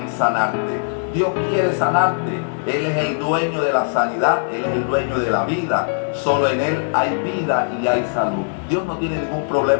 sanarte. Dios quiere sanarte. Él es el dueño de la sanidad, Él es el dueño de la vida. Solo en Él hay vida y hay salud. Dios no tiene ningún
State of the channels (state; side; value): silent; right; digital silence